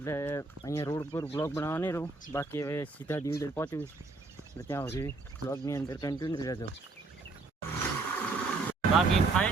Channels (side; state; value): left; quieter; 3.6 dB